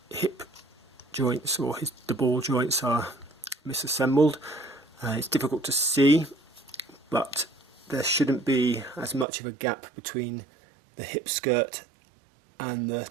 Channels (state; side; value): drops out; left; at 9.2 s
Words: hip joints or the ball joints are misassembled. It's difficult to see, but there shouldn't be as much of a gap between the hip skirt and the